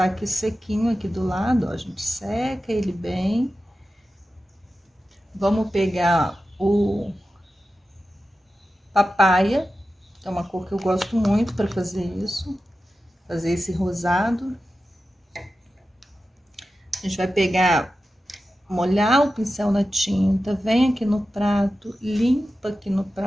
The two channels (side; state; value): both; normal; correlation 0.92